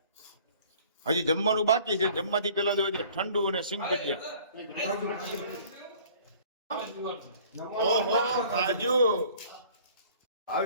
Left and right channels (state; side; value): inverted; both; correlation -0.52